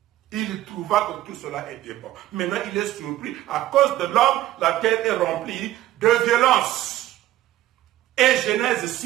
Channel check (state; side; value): quieter; left; 14.6 dB